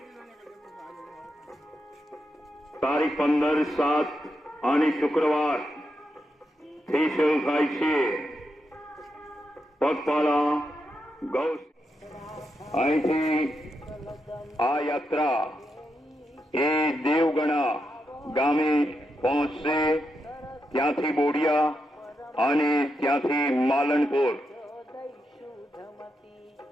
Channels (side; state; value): both; normal; correlation 0.85